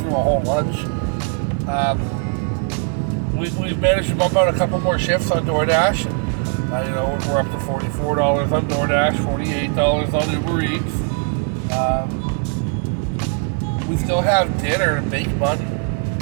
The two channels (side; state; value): left; quieter; 37.2 dB